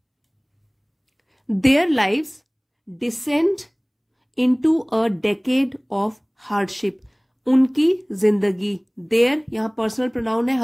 Their lives descend into a decade of hardship. उनकी जिंदगी, देयर यहाँ पर्सनल प्रोनाउन है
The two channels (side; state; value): both; identical; correlation 1.00